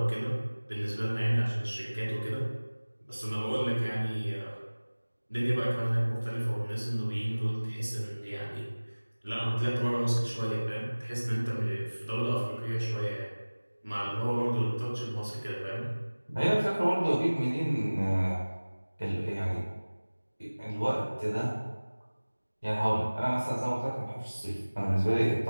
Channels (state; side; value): inverted; both; correlation -1.00